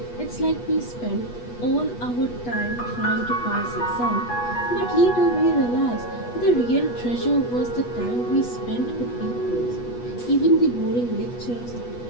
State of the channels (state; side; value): late; right; 8.3 ms